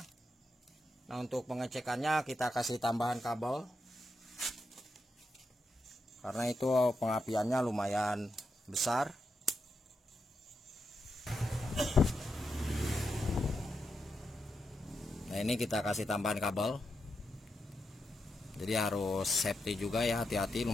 Nah, untuk pengecekannya kita kasih tambahan kabel karena itu pengapiannya lumayan besar. Nah, ini kita kasih tambahan kabel. Jadi harus safety juga ya, hati-hati,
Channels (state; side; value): normal; both; correlation 0.86